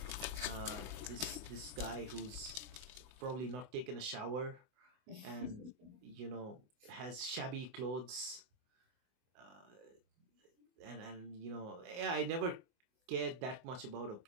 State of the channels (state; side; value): late; left; 24 ms